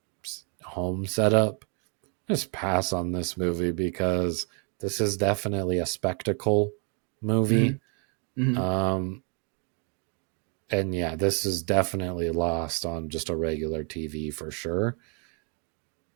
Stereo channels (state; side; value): quieter; left; 38.0 dB